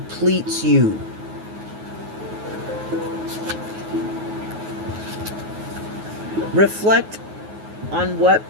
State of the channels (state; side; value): late; left; 9.4 ms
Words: you? Reflect on what